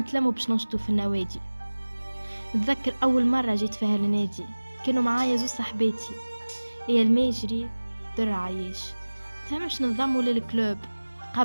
باش ننشطوا في النوادي. نتذكر أول مرة جيت فيها النادي كانوا معايا زوج صاحباتي، هي الماجري در عايش. فهمش ننضموا للكلوب،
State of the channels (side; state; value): both; inverted; correlation -1.00